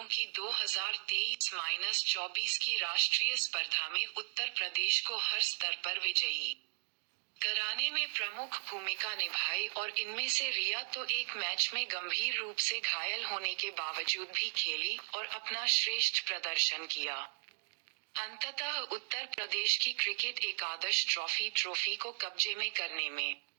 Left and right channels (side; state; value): left; silent; 54 dB below the other